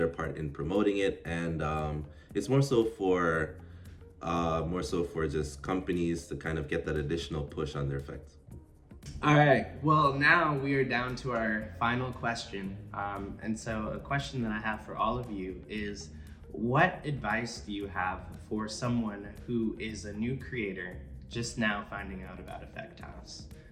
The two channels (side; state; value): both; identical; correlation 1.00